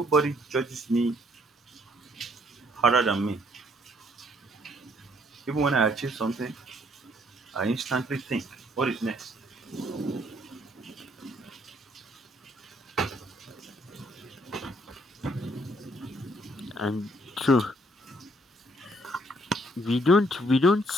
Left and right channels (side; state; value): both; normal; correlation 0.66